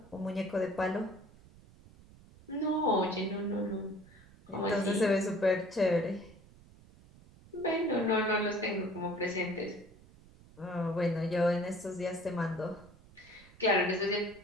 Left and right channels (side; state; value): right; noise; rumble, 23 dB below the sound